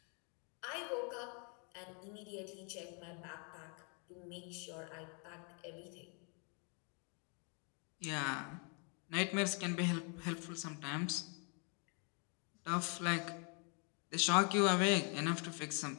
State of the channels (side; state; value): right; quieter; 37.3 dB